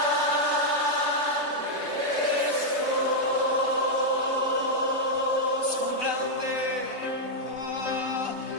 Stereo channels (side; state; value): left; late; 3.2 ms